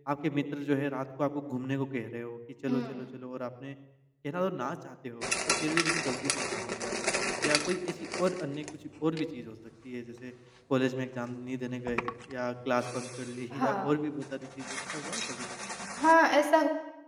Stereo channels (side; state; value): both; identical; correlation 1.00